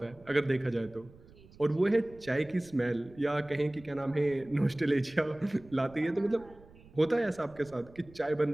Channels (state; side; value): noise; right; rumble, 23 dB below the sound